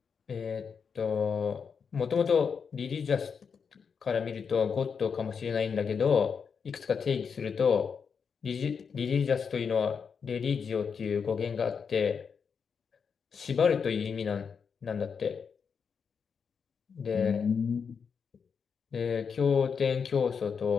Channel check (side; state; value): right; quieter; 6.2 dB